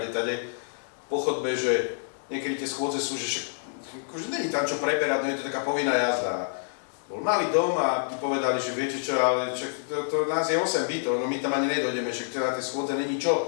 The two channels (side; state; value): right; silent; digital silence